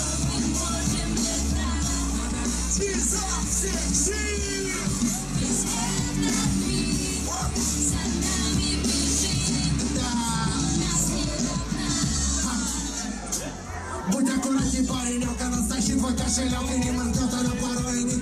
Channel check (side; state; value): both; identical; correlation 1.00